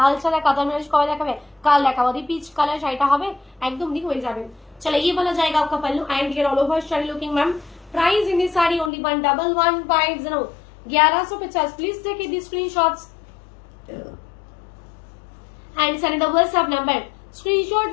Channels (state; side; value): drops out; right; at 8.9 s